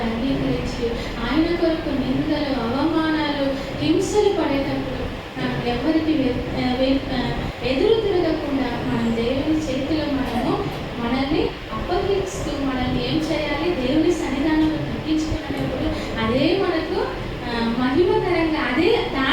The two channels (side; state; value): both; identical; correlation 1.00